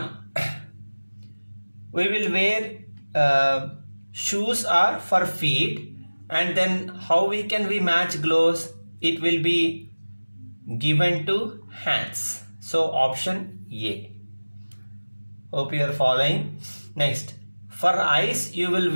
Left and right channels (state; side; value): inverted; both; correlation -1.00